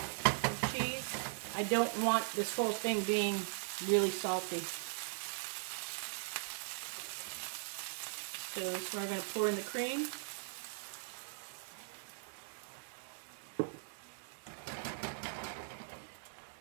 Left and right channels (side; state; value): left; silent; digital silence